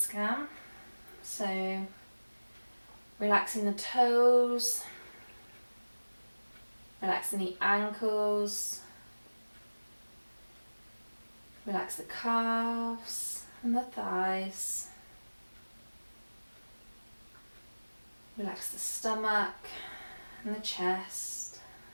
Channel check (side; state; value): both; inverted; correlation -1.00